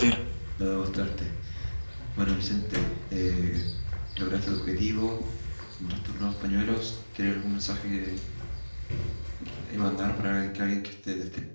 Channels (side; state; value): both; inverted; correlation -1.00